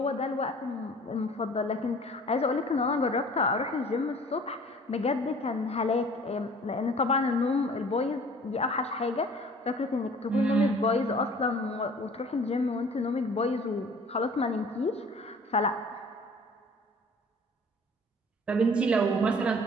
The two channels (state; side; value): normal; both; correlation 0.49